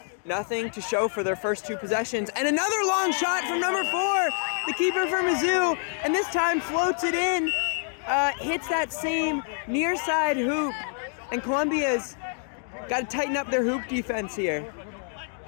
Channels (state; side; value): silent; right; 60 dB below the other